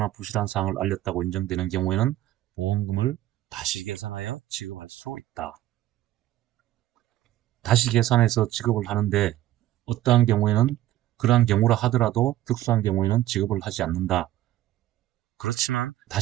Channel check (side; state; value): left; quieter; 14.4 dB